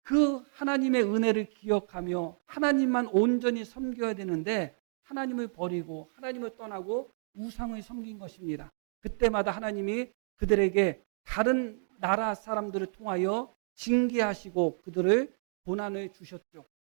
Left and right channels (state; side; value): silent; left; digital silence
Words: 그 하나님의 은혜를 기억하며 하나님만 온전히 섬겨야 되는데 하나님을 버리고 하나님을 떠나고 우상을 섬긴 것입니다. 그때마다 하나님이 그들에게 다른 나라 사람들을 통하여 징계하시고 그들을 고난을 주셨죠.